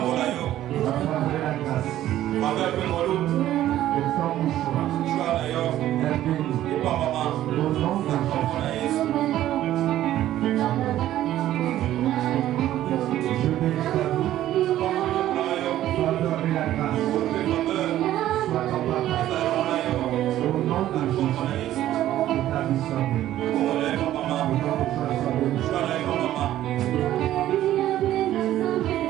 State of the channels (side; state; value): left; quieter; 13.2 dB